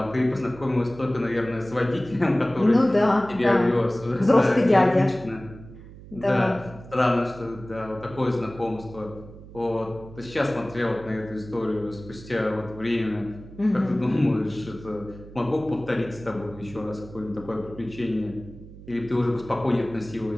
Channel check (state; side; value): noise; right; hum, 17 dB below the sound